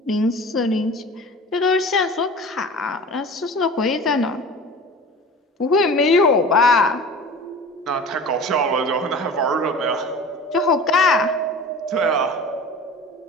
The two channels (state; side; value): normal; both; correlation 0.38